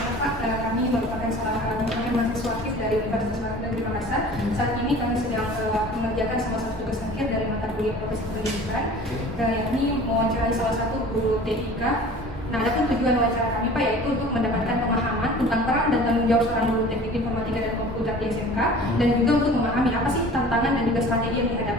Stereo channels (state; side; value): normal; both; correlation 0.44